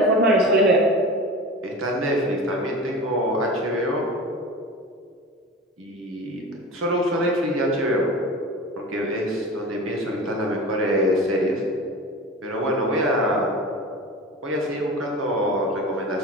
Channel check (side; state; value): both; normal; correlation 0.32